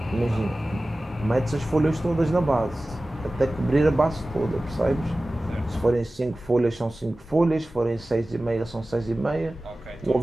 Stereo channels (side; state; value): both; normal; correlation 0.96